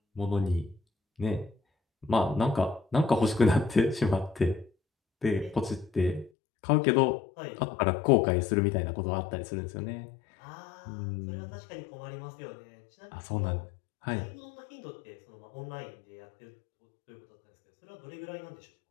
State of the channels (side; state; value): right; drops out; at 6.3 s